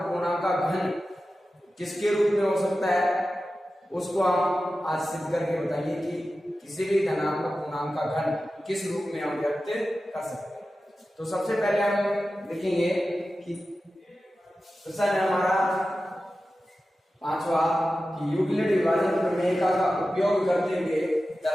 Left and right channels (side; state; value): both; normal; correlation 0.94